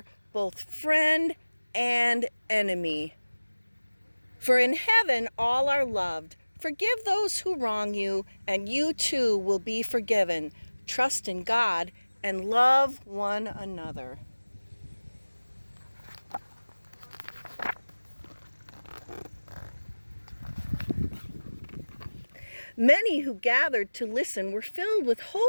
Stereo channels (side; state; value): both; inverted; correlation -1.00